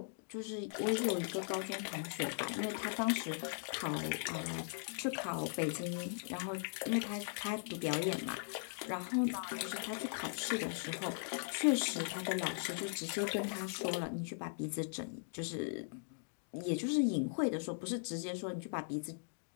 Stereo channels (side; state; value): right; silent; digital silence